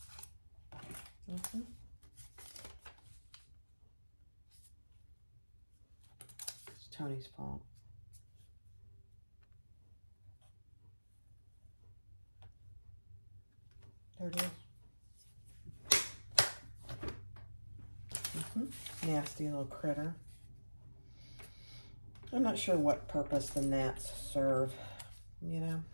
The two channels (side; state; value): both; inverted; correlation -1.00